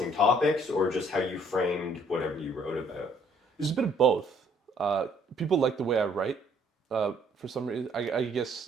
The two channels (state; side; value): normal; both; correlation 0.63